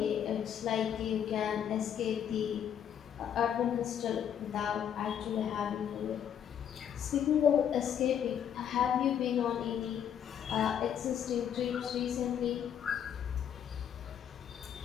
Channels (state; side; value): quieter; right; 9.0 dB